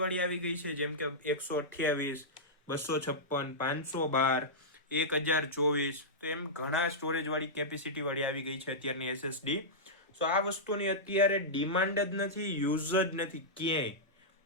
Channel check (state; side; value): normal; both; correlation -0.11